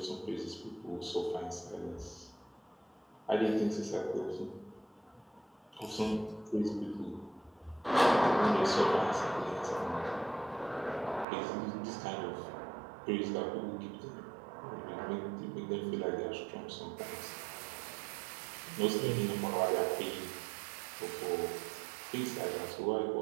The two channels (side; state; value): left; drops out; at 11.2 s